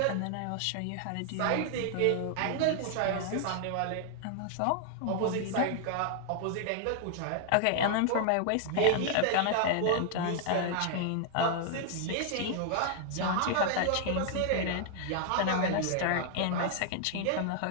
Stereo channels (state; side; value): different; both; correlation 0.00